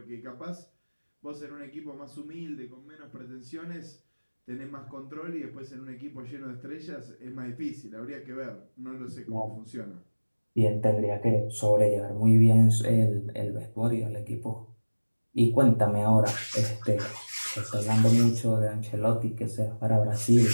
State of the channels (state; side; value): inverted; both; correlation -1.00